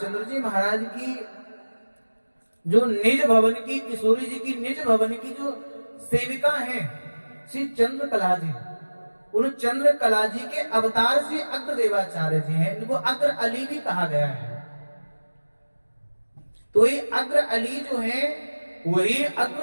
जी महाराज की जो निज भवन की, किशोरी जी की निज भवन की जो सेविका हैं श्री चंद्रकला जी, उन चंद्रकला जी के अवतार श्री अग्रदेवाचार्य जी हैं। इनको अग्र अली भी कहा गया है। तो ये अग्र अली जो है वही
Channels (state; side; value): inverted; both; correlation -1.00